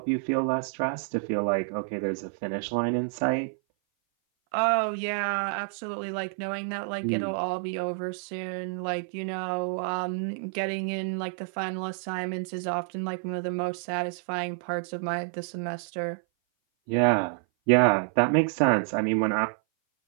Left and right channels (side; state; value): left; silent; 57 dB below the other